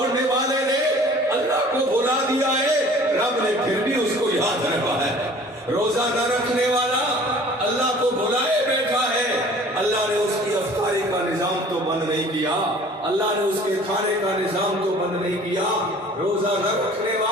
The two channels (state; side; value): normal; both; correlation 0.49